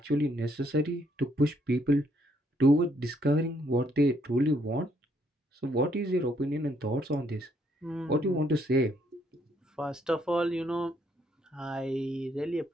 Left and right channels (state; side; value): normal; both; correlation 0.71